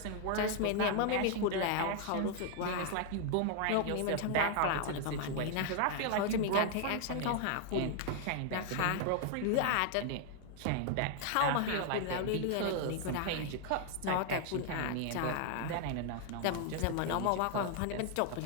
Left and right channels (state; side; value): different; both; correlation 0.00